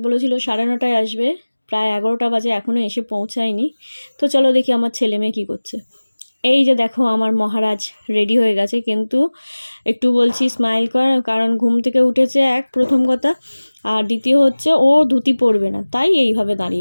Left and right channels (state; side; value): inverted; both; correlation -1.00